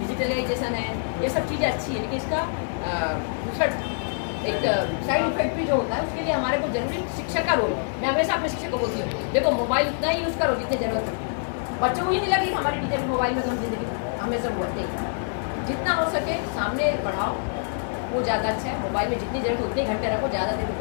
है, ये सब चीज़ें अच्छी है, लेकिन इसका दूसरा एक साइड इफेक्ट भी जो होता है, उसके लिए हमारे को जरूरी शिक्षक का रोल है। मैं हमेशा अपने शिक्षक को बोलती हूँ, देखो मोबाइल उतना ही यूज़ करो जितनी जरूरत है। बच्चों को ये नहीं लगे कि हमारी टीचर मोबाइल में तो हम जिंदगी हमेशा बोलते हैं। जितना हो सके सामने पढ़ाओ, वो ज़्यादा अच्छा है। मोबाइल में जितनी जरूरत उतने घंटे रखो, ज़्यादा देर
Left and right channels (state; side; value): silent; right; digital silence